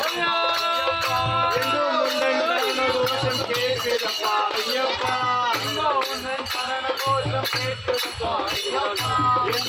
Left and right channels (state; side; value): identical; both; correlation 1.00